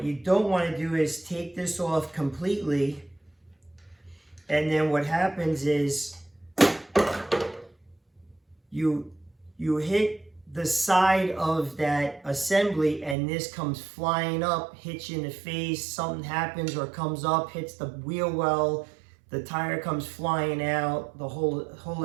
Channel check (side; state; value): left; drops out; at 13.2 s